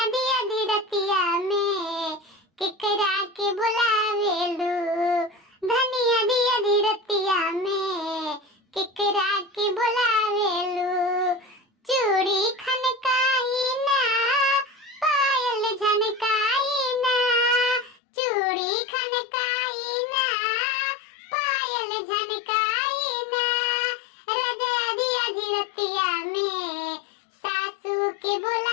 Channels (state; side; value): drops out; right; at 18.0 s